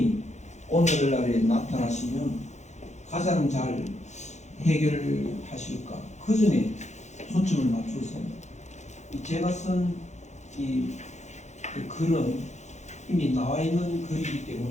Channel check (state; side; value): late; right; 0.33 ms